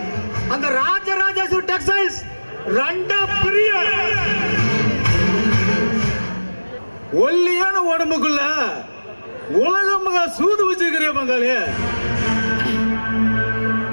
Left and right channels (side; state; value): both; inverted; correlation -1.00